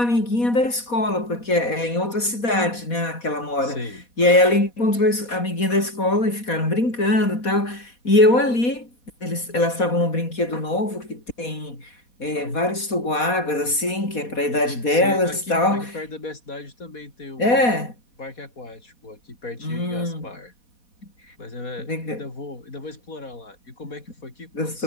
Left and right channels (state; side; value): late; right; 4.2 ms